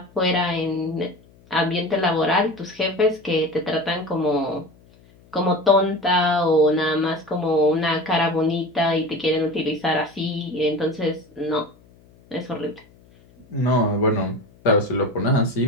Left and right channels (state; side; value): noise; left; hum, 28 dB below the sound